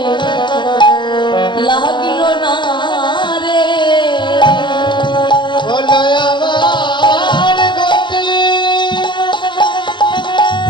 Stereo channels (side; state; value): right; late; 0.23 ms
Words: লাগিল না রে। বলো আমার গতি